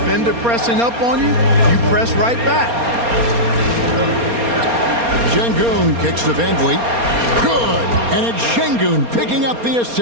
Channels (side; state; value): left; late; 4.3 ms